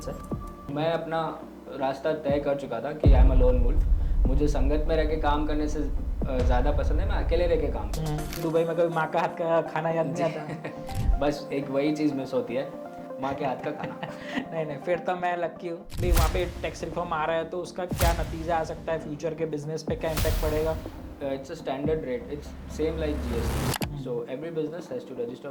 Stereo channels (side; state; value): both; identical; correlation 1.00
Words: हैं। मैं अपना रास्ता तय कर चुका था कि I am a lone wolf. मुझे संगत में रह के काम करने से ज़्यादा पसंद है मैं अकेले रह के काम करूँ। दुबई में कभी माँ का हाथ का खाना याद नहीं आता? बस एक वही चीज़ मिस होती है, माँ के हाथ का खाना। नहीं, फिर तो मैं लकी हूँ भाई। वहाँ पे टैक्स रिफॉर्म आ रहा है, तो उसका क्या नतीजा आ सकता है, फ्यूचर के बिजनेस पे क्या इम्पैक्ट पड़ेगा? It's a standard rate. It's same like GST. So every business has to